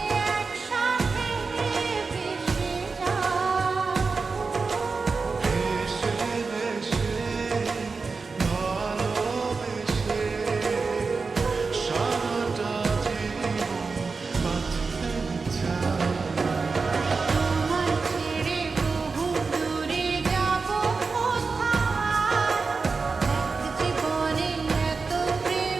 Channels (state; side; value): quieter; left; 4.4 dB